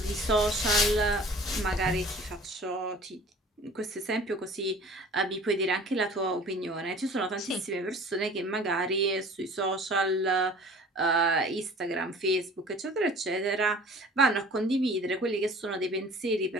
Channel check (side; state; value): both; normal; correlation 0.46